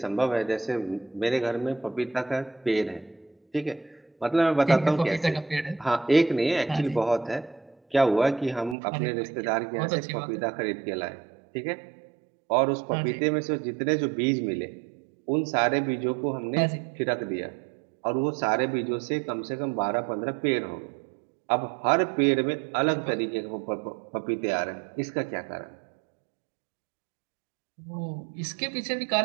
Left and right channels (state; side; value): drops out; left; at 8.8 s